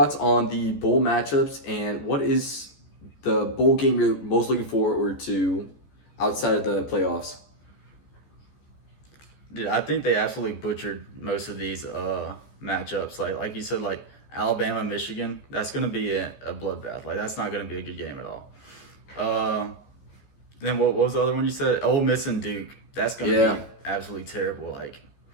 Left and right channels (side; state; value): right; late; 14 ms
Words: on the bowl matchups, and what is the bowl game you're most looking forward to outside of the playoffs? Dude, I think they absolutely butchered most of these matchups. Like you said, like Alabama, Michigan, that's going to be a bloodbath. Like, that's not going to be a good game at all. Then what was the other one you said? Ole Miss and Duke. That's going to be absolutely terrible. Like,